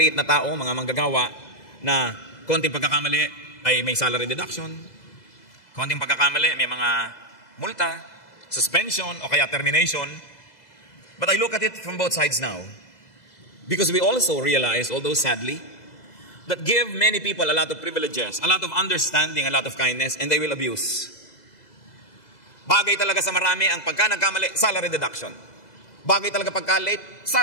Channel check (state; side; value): late; right; 2.0 ms